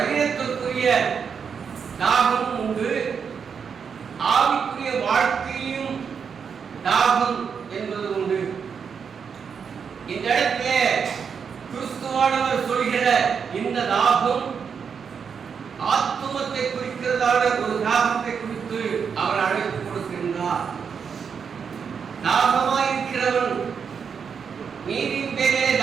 தாகம் உண்டு, ஆவிக்குரிய வாழ்க்கையும் தாகம் என்பது உண்டு. இந்த இடத்திலே கிறிஸ்துவானவர் சொல்கிற இந்த தாகம் ஆத்துமத்தை குறிக்கிறதான ஒரு தாகத்தை குறித்து அவர் அழைப்பு கொடுக்கின்றார். தாகமாயிருக்கிறவன், நீரின் பேரே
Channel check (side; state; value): left; quieter; 6.5 dB